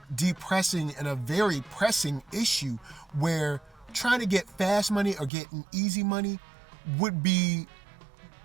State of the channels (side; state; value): left; drops out; at 5.3 s